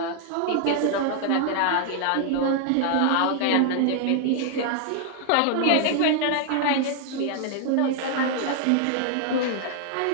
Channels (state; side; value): different; both; correlation 0.00